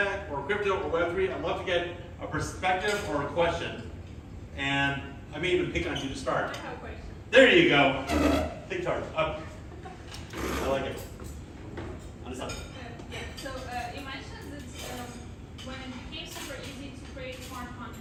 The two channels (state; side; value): identical; both; correlation 1.00